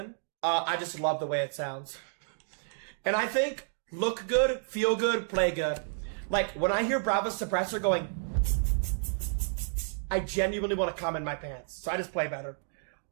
I just love the way it sounds. And I think look good, feel good, play good. Like, when I hear Brava's Suppressor going, I genuinely want to come in my pants. So I just play better.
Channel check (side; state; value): left; silent; digital silence